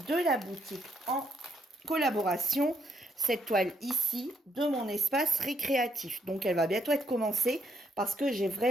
de la boutique en collaboration, cette toile ici de mon espace récréatif. Donc elle va bientôt être commencée parce que j'ai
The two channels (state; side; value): normal; both; correlation 0.75